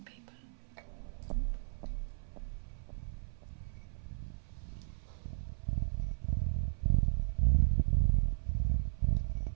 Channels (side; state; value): left; silent; 54 dB below the other